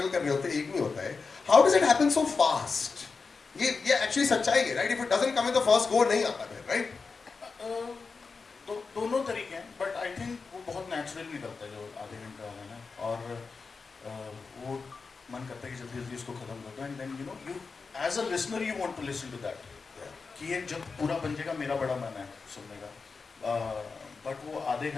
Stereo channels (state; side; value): quieter; right; 4.7 dB